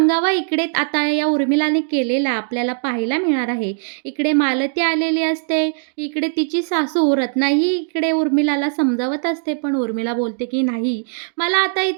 इकडे आता या उर्मिलाने केलेला आपल्याला पाहायला मिळणार आहे. इकडे मालती आलेली असते. इकडे तिची सासू रत्नाही इकडे उर्मिलाला समजावत असते, पण उर्मिला बोलते की नाही, मला आता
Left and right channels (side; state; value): left; silent; digital silence